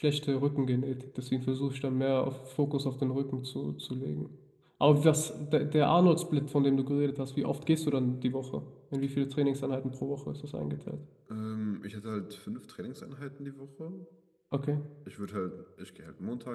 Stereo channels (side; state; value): both; identical; correlation 1.00